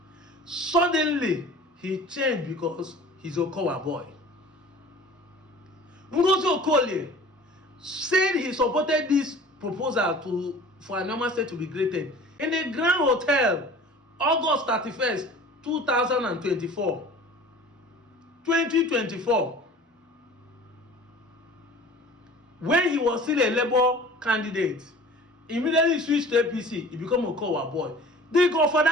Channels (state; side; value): normal; both; correlation 0.44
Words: Suddenly, he changed because he's Okowa boy. Ngozi Okolie said he supported this proposal for Anioma State to be created in a Grand Hotel, August 31st, 2024. 2024. When he was still a Labour candidate, immediately switched to APC, he became a Okowa boy. For